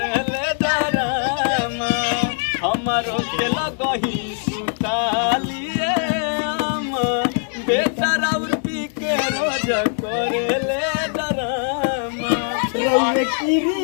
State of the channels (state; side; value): silent; right; 65 dB below the other